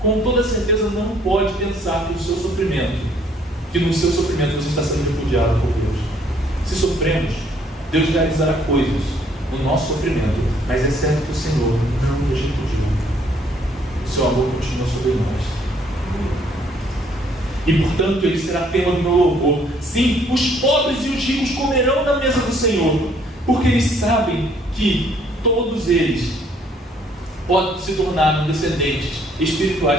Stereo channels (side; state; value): both; normal; correlation 0.64